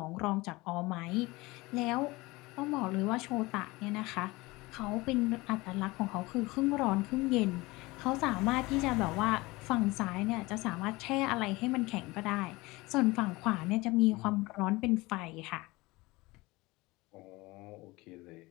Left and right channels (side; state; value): right; quieter; 21.9 dB